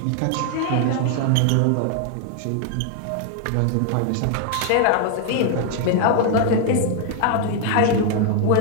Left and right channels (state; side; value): different; both; correlation 0.00